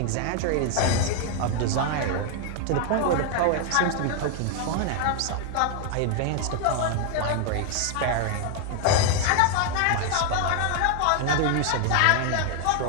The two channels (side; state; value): both; different; correlation 0.00